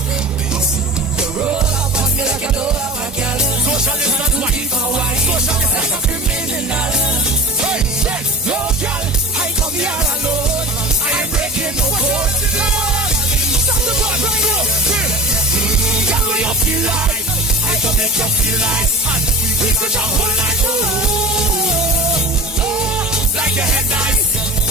The road up on me like a door, my girl. Social distance, social distance like a criminal. Hey, no girl, I come here alone. I ain't breaking no code. Stop the boy right now. Girl, what you feel like? I can make you feel like. And we could jump all night. Like your head nice.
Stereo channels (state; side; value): normal; both; correlation 0.34